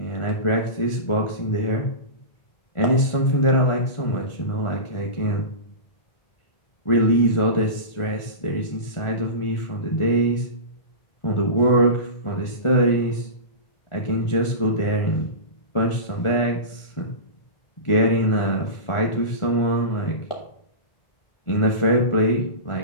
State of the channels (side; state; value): right; late; 1.4 ms